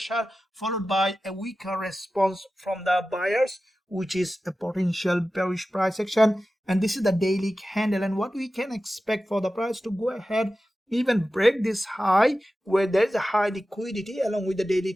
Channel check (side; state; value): both; normal; correlation 0.94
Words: followed by a weaker response from the buyers, which is a potential bearish price action. And this is the daily candle, and what we can expect for the price to go ahead even break this high where there is a high liquidity along with the daily